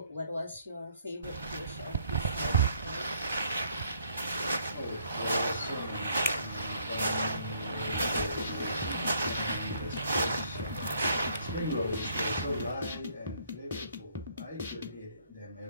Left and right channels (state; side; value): inverted; both; correlation -0.66